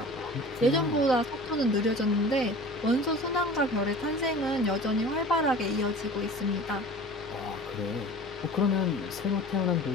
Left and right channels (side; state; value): both; normal; correlation 0.41